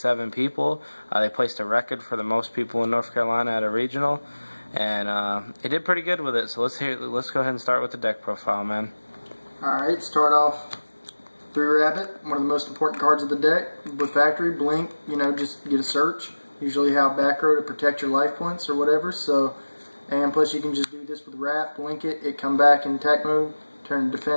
people. They placed a record for the most people in North Carolina at a regional, and he did pretty good with it. So let's go ahead and start with the deck profile, man. Alright, start off 3 Rabbit, one of the most important cards of the deck. With Factory, Blink, just get a search. Usually have back row to protect your life points or whatever, so, and plus you can just do this with Wrap, blink it come back in attack mode, turn to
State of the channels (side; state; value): both; inverted; correlation -1.00